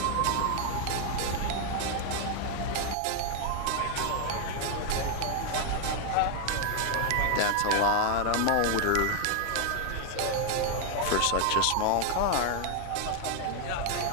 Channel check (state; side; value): different; both; correlation 0.00